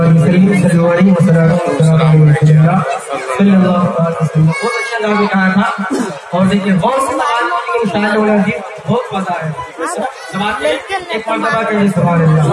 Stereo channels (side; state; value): both; identical; correlation 1.00